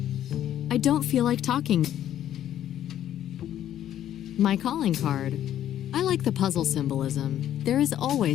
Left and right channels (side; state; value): right; quieter; 11.4 dB